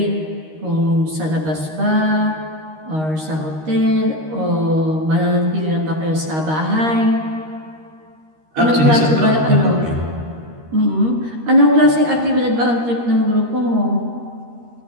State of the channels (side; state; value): left; late; 13 ms